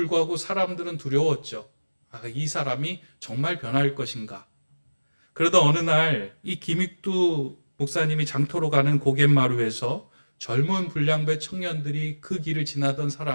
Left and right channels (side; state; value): both; inverted; correlation -1.00